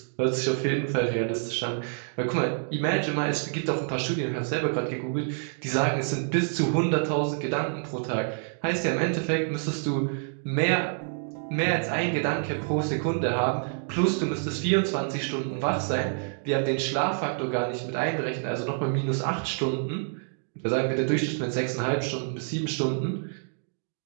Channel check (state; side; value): silent; left; 60 dB below the other